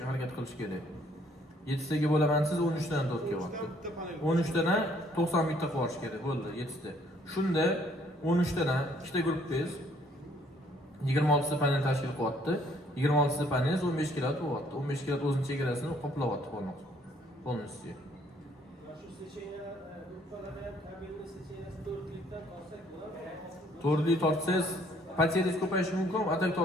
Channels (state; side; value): normal; both; correlation 0.63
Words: harakat qilish kerak. 7 taga bo'laman siz 13 dan 4 kilovatni. 13 dan 90 bitta qilish kerak bo'ldi 7 ta. Shunda 13 dan ikkita guruhbangiz 26 ta panel tashkil qilyapti. 26 ta panel 15 kilovat bo'lyapti. 15 kilovat o'zining chegarasini qoplayapti полностью. Shu seçeneğe yukarıdan kabelli seçeneğe 4'lükten alsak bular. To'rtlik tortsangiz pateringiz ko'payishi mumkin, atak